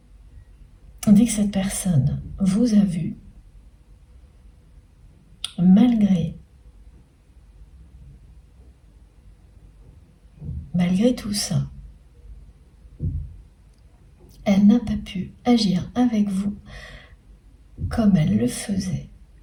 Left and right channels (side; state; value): both; identical; correlation 1.00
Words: dès que cette personne vous a vu, malgré tout ça, elle n'a pas pu agir avec vous comme elle le faisait